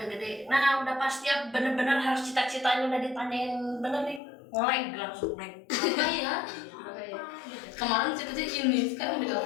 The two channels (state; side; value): drops out; right; at 4.2 s